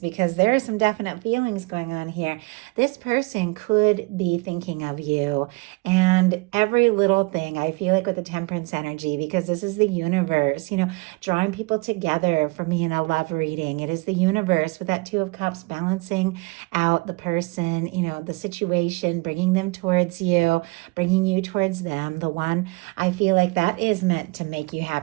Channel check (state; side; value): quieter; left; 26.4 dB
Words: there are some definite feelings going on here. This person could be thinking of you and every little thing. I feel like with the Temperance energy, because this is the universe, drawing people together for me in a love reading. It is the universe with that Two of Cups balancing out the person, the situation, bringing them towards you, bringing you towards them. The one, I feel like that is meant to make you